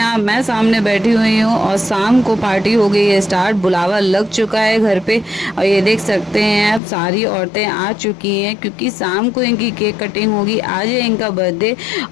आप, मैं सामने बैठी हुई हूँ और शाम को पार्टी हो गई है स्टार्ट। बुलावा लग चुका है घर पे और ये देख सकते हैं आप, सारी औरतें आ चुकी हैं क्योंकि शाम को इनकी केक कटिंग होगी। आज है इनका बर्थडे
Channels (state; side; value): drops out; right; at 6.8 s